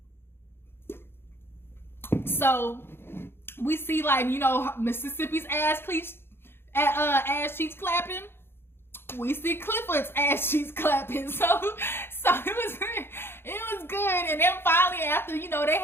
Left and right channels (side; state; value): right; late; 0.11 ms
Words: So we see, like, you know, Mississippi's ass cheeks clapping. We see Clifford's ass cheeks clapping. So it was good. And then finally, after, you know, they